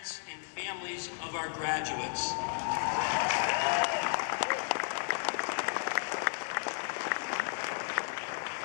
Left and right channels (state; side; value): silent; right; digital silence